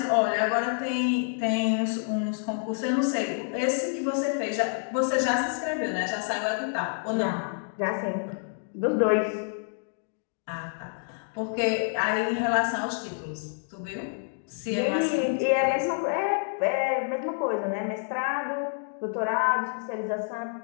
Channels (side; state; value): right; silent; 59 dB below the other